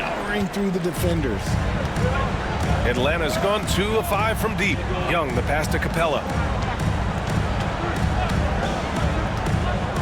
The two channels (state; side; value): identical; both; correlation 1.00